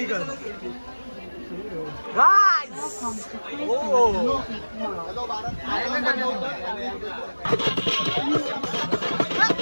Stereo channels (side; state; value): both; inverted; correlation -1.00